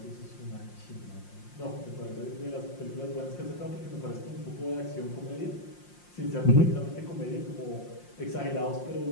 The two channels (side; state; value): right; late; 5.7 ms